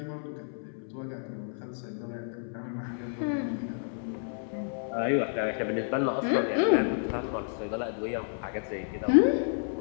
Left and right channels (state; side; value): silent; right; 57 dB below the other